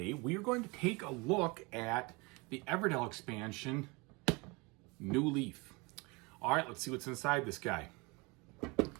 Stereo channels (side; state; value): left; quieter; 27.2 dB